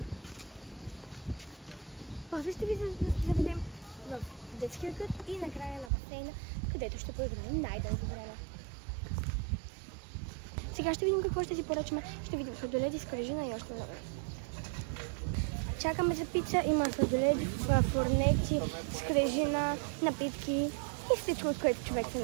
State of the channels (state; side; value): drops out; left; at 5.9 s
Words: После ще ви заведем в детския кът и накрая на басейна, където ще поиграем най-дълго време. Сега ще видим какво ще си поръчаме. Ще видим сладоледи, скрижина и още много. Чакаме за пица. Има сладоледи, фурнети, скрижина, напитки и всичко, от което човек